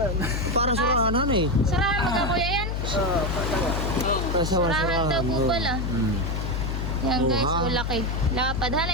Para surahan eh. Surahan mo ka Kuya yan? Surahan daw po pala. Yan guys, laki. Lapadhan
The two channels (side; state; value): left; noise; hum, 1 dB below the sound